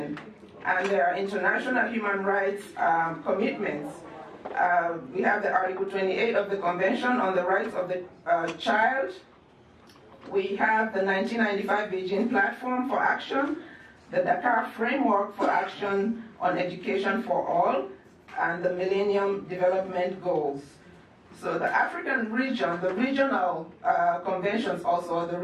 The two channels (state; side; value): identical; both; correlation 1.00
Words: and there are international human rights commitments. We have the Article 28 of the Convention on the Rights of the Child. We have the 1995 Beijing Platform for Action, the Dakar Framework for Action on Education for All, and the Millennium Development Goals. So the African region, the regional conventions also, the